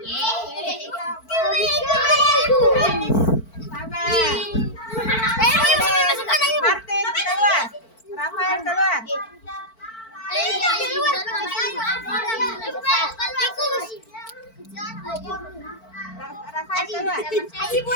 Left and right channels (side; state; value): right; late; 4.5 ms